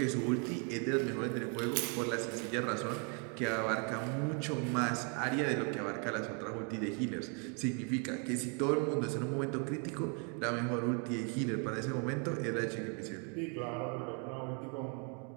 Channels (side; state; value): left; quieter; 36.2 dB